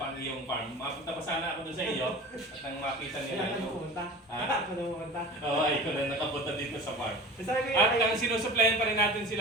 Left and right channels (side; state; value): both; normal; correlation 0.37